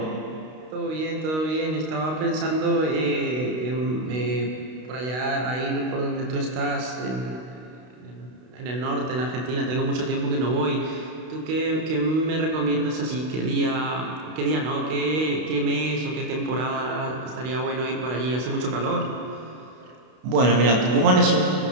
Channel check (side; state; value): left; late; 32 ms